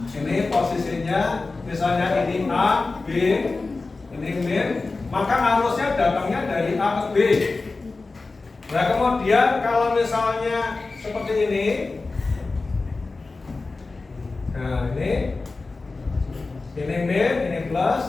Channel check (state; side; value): quieter; right; 3.7 dB